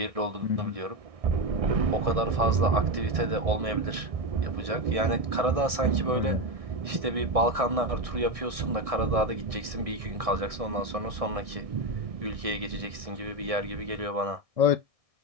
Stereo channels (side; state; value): left; late; 1.6 ms